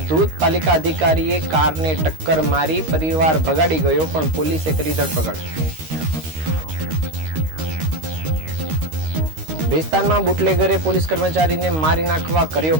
ધૂત પાલિકા અધિકારીએ કારને ટક્કર મારી પરિવાર ભગાડી ગયો, પણ પોલીસે કરી ધરપકડ। ભેસ્તાનમાં બુટલેગરે પોલીસ કર્મચારીને મારી નાખવા કર્યો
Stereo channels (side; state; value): left; late; 13 ms